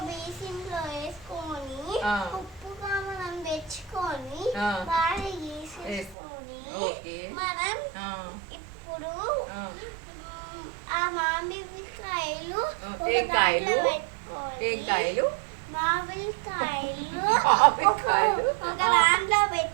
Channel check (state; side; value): drops out; left; at 6.2 s